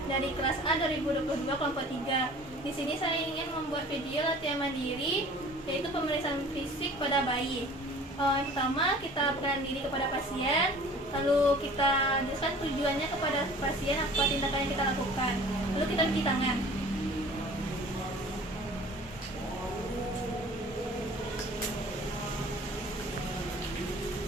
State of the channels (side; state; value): both; normal; correlation 0.47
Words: dari kelas A 2022 kelompok 3. Di sini saya ingin membuat video latihan mandiri yaitu pemeriksaan fisik pada bayi. Yang pertama, kita perkenalkan diri kepada pasien, lalu kita jelaskan tujuannya kepada pasien, apa tindakan yang kita lakukan, lalu kita cuci tangan.